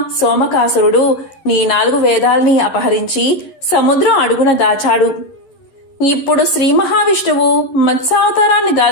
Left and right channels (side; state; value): right; late; 11 ms